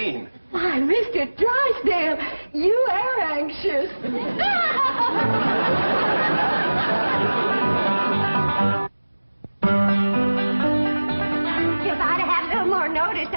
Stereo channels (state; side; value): inverted; both; correlation -1.00